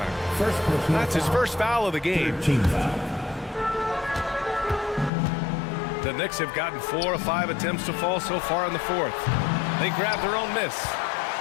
That's his first foul of the game. The Knicks have gotten 4 of 5 attempts to fall so far in the 4th. They grab their own miss.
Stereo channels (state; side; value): drops out; right; at 5.1 s